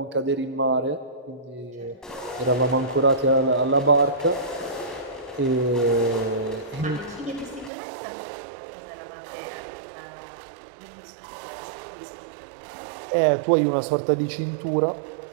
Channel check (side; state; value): left; drops out; at 7.7 s